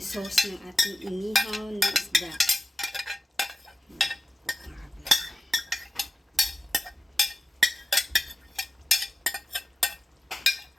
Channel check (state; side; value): normal; both; correlation 0.95